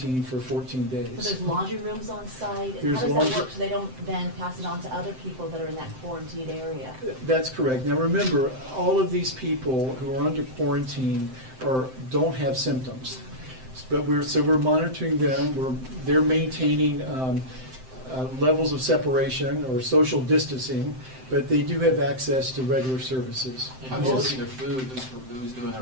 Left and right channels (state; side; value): late; left; 7.8 ms